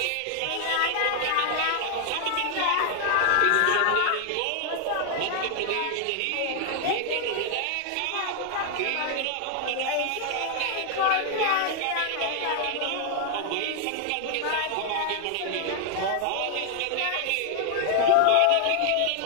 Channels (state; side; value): different; both; correlation 0.00